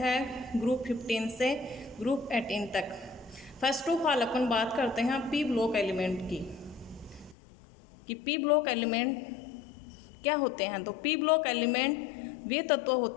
ग्रुप 15 से ग्रुप 18 तक। फर्स्ट ऑफ ऑल अपन बात करते हैं पी ब्लॉक एलिमेंट की कि पी ब्लॉक एलिमेंट क्या होते हैं। तो पी ब्लॉक एलिमेंट वे तत्व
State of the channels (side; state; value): right; drops out; at 7.4 s